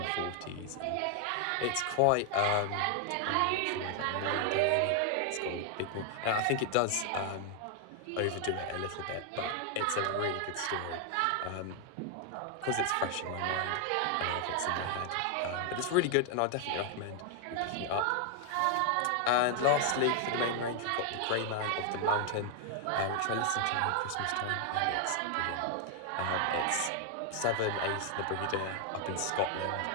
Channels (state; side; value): different; both; correlation 0.00